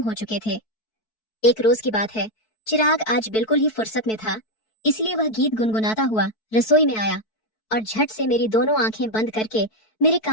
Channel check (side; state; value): right; late; 4.6 ms